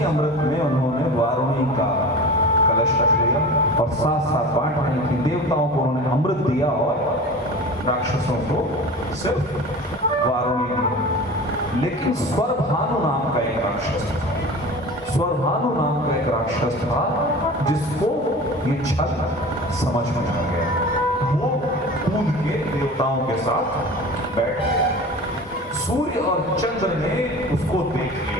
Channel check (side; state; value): both; normal; correlation 0.35